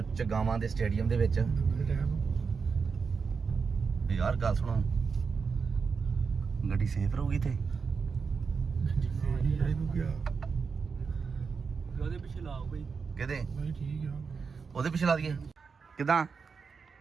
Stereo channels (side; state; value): left; quieter; 5.4 dB